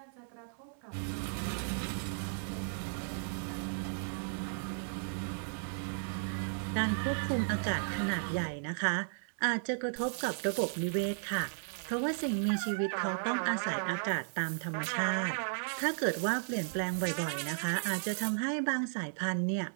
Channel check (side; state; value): left; silent; 55 dB below the other